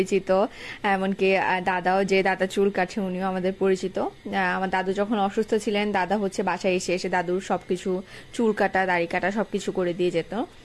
এমনকি দাদাও, যে দাদা চুল কাটছে উনিও আমাদের পরিচিত। আমার দাদু যখন অসুস্থ ছিলেন দাদা হচ্ছে বাসায় এসে এসে দাদুর সবকিছু চুল কাটা দাড়ি কাটা সবকিছু করে দিয়ে যেত।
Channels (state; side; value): identical; both; correlation 1.00